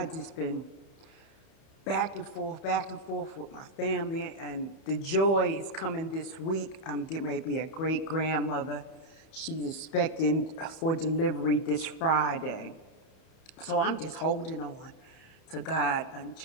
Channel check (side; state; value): right; late; 31 ms